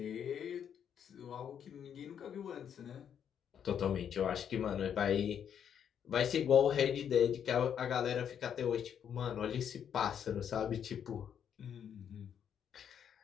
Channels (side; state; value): right; quieter; 8.5 dB